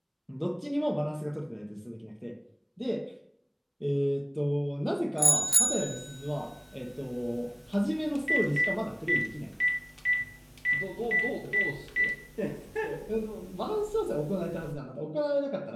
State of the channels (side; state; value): both; identical; correlation 1.00